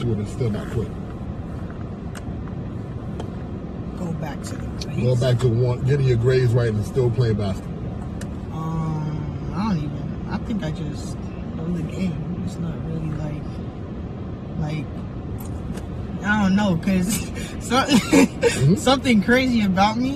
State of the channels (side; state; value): both; identical; correlation 1.00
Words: it and still not quit? Go back to the grades? Go back to getting your grades right and still playing basketball. I think I just love the game. It's not really like I don't know, because something crazy about